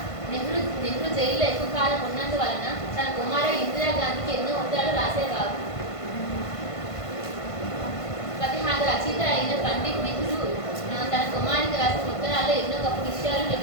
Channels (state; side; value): late; right; 1.5 ms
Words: నెహ్రూ జైల్లో ఎక్కువ కాలం ఉన్నందువలన తన కుమార్తె ఇందిరాగాంధీకి ఎన్నో ఉత్తరాలు రాసేవారు. ప్రతిహార రచయిత అయిన పండిట్ నెహ్రూ తన కుమారునికి రాసిన ఉత్తరాల్లో ఎన్నో గొప్ప విషయాలు